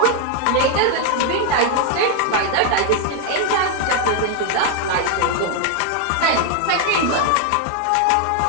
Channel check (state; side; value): different; both; correlation 0.01